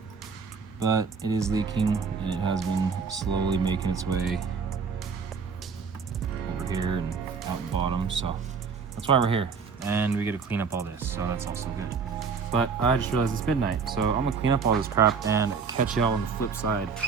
but it is leaking, and it has been slowly making its way over here and out the bottom, so that's why we're here. And we get to clean up all this, so that's also good. But I just realized it's midnight, so I'm gonna clean up all this crap and catch y'all on the flip side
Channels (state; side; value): quieter; left; 5.5 dB